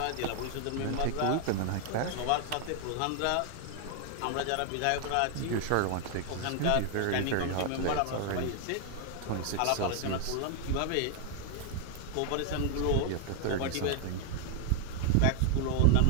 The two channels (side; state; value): both; different; correlation 0.00